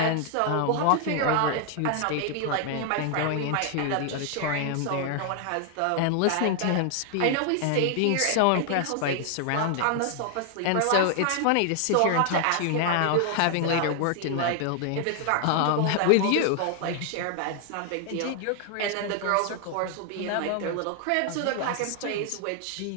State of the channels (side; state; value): both; different; correlation 0.00